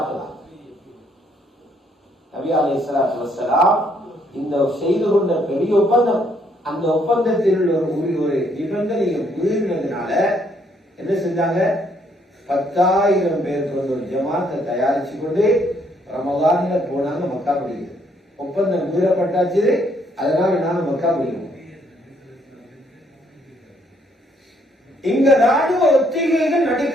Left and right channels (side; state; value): both; normal; correlation 0.69